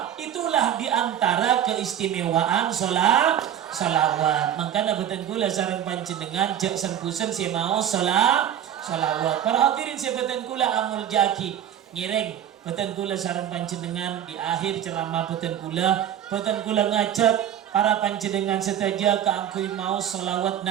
Itulah diantara keistimewaan sholawat. Makanya beten kula sareng panjenengan jak sempusen si mau sholawat. Para hadirin si beten kula amul jaki ngireng beten kula sareng panjenengan di akhir ceramah beten kula ngajak para panjenengan setaja keangkui mau sholawat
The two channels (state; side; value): quieter; left; 10.1 dB